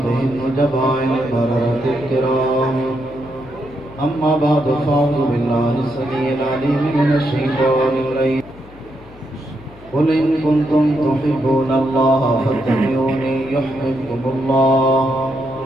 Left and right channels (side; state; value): left; noise; hum, 21 dB below the sound